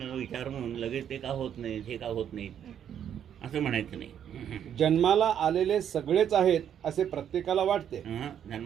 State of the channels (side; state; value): left; quieter; 9.3 dB